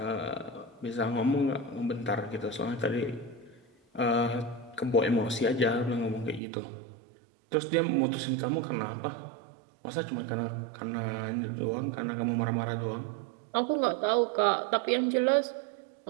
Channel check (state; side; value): drops out; left; at 6.4 s